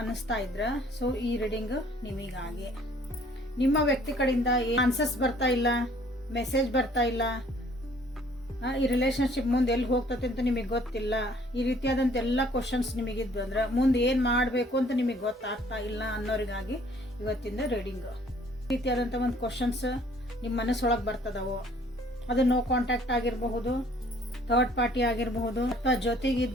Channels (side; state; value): both; normal; correlation 0.58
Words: ಅನ್ನಿಸ್ತಾ ಇದ್ರ ಸೊ ಈ ರೀಡಿಂಗ್ ನಿಮಗಾಗಿ. ನಿಮ್ಮ ವ್ಯಕ್ತಿ ಕಡೆಯಿಂದ ಆನ್ಸರ್ಸ್ ಬರ್ತಾ ಇಲ್ಲ, ಮೆಸೇಜ್ ಬರ್ತಾ ಇಲ್ಲ, ಈ ರಿಲೇಶನ್ಶಿಪ್ ಮುಂದೆ ಎಲ್ಲಿ ಹೋಗ್ತದೆ ಅಂತ ನಿಮಗೆ ಗೊತ್ತಿಲ್ಲ, ಈ ರೀತಿಯಾದಂಥ ಎಲ್ಲ ಕ್ವಶನ್ಸ್ ನಿಮಗಿದ್ವು ಅಂದ್ರೆ ಮುಂದೆ ಏನು ಮಾಡಬೇಕು ಅಂತ ನಿಮಗೆ ಗೊತ್ತಾಗ್ತಾ ಇಲ್ಲ ಅನ್ನೋರಿಗಾಗಿ ಇವತ್ತಿಂದ ರೀಡಿಂಗು. ಈ ರೀತಿಯಾದಂಥ ಒಂದು ಕ್ವಶನ್ಸ್ ನಿಮ್ಮ ಮನಸ್ಸೊಳಗೆ ಬರ್ತದವು. ಅದು ನೋ ಕಾಂಟ್ಯಾಕ್ಟ್ ಆಗಿರಬಹುದು, ಥರ್ಡ್ ಪಾರ್ಟಿ ಆಗಿರಬಹುದು, ಅಥವಾ